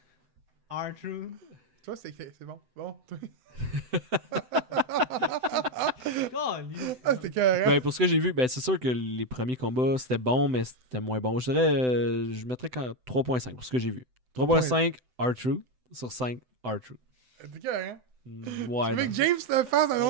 R2. Toi, c'est bon. Bon, toi. Ah, c'était carré. Ben, pour ce que j'ai vu, ben, c'est sûr que les premiers combats, c'était bon, mais c'était moins bon. Je dirais. Je mettrais 3.5 pour ce que j'ai vu. 3.5 R-Truth sur 5 R-Truth. C'était carré. Ouais. Tu veux non. que James le fasse dans un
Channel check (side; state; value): left; late; 7.9 ms